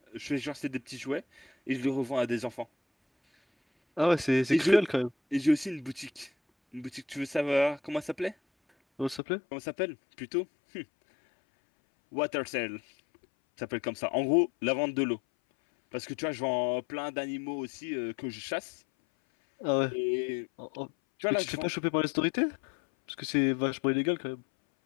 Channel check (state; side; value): drops out; right; at 9.2 s